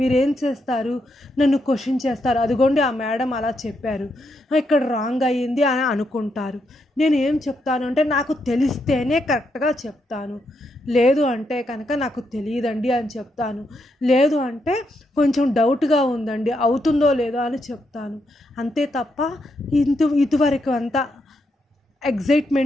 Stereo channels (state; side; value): normal; both; correlation 0.80